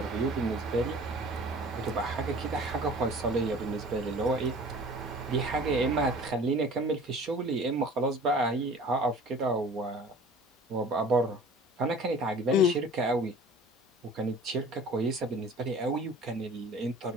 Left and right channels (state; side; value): normal; both; correlation 0.45